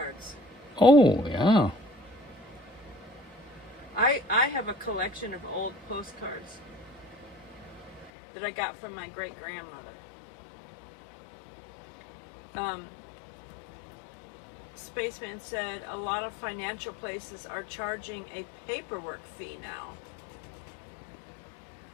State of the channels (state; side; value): drops out; right; at 8.1 s